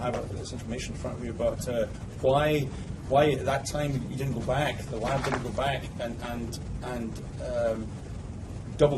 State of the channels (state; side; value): identical; both; correlation 1.00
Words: have this information in front of you, but why at that time you didn't go back, the lab didn't go back and